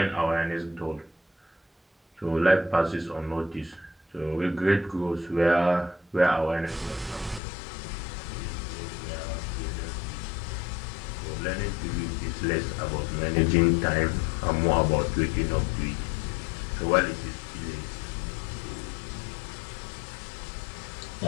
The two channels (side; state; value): right; drops out; at 7.4 s